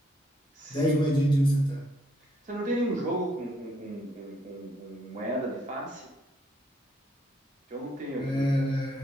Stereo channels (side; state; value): both; normal; correlation 0.72